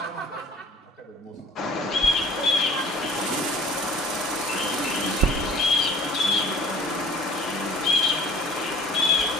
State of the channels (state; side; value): normal; both; correlation 0.48